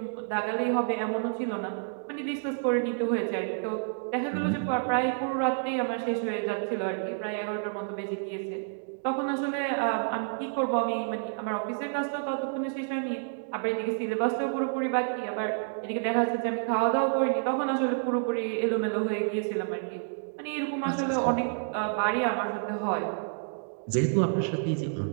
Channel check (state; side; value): silent; left; digital silence